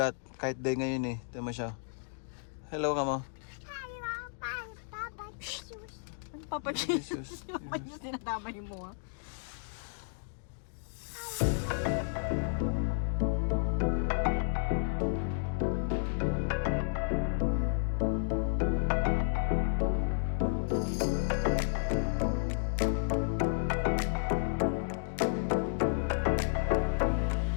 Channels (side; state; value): right; silent; digital silence